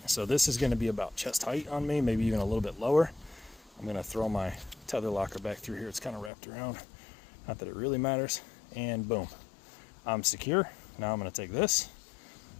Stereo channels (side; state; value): right; drops out; at 6.3 s